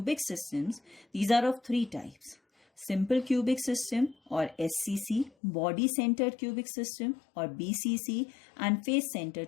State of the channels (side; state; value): right; drops out; at 5.3 s